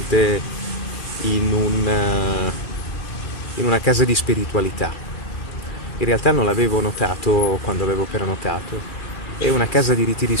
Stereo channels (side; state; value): right; late; 2.4 ms